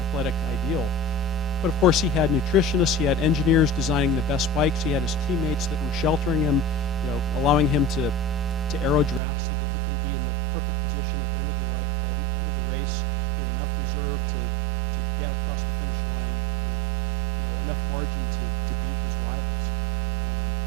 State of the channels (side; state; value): left; drops out; at 9.2 s